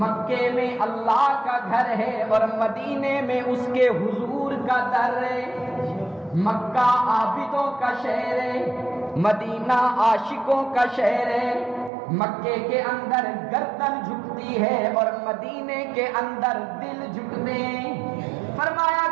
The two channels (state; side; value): drops out; left; at 11.9 s